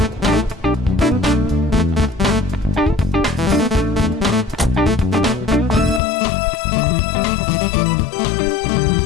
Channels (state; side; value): drops out; right; at 6.0 s